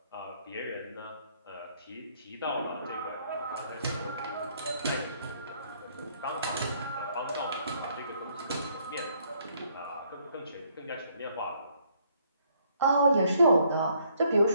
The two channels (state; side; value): inverted; both; correlation -0.67